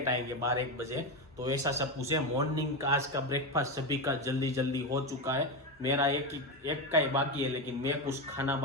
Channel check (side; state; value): both; normal; correlation 0.14